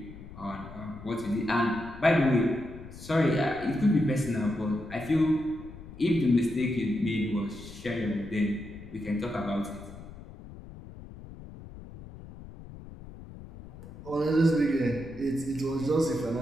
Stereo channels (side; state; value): left; noise; rumble, 15 dB below the sound